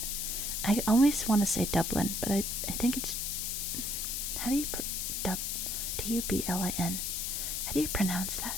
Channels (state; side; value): noise; left; hiss, 1 dB below the sound